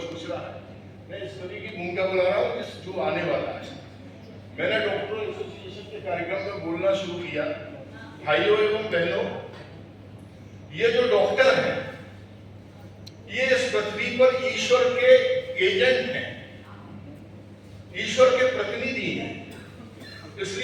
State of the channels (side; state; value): both; identical; correlation 1.00